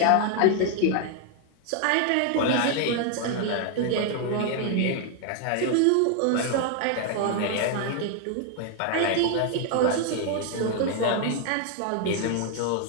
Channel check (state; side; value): different; both; correlation 0.00